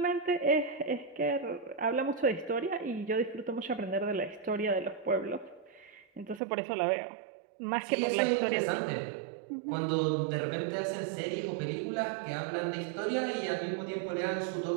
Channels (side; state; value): left; drops out; at 6.4 s